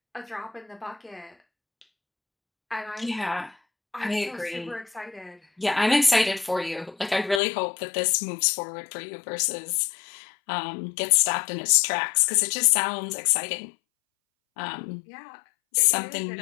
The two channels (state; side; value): drops out; right; at 7.4 s